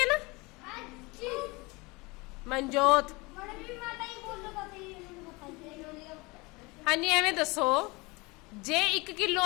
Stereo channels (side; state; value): right; quieter; 24.9 dB